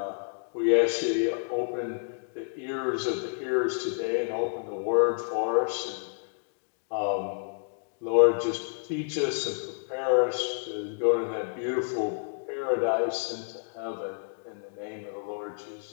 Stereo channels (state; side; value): silent; right; digital silence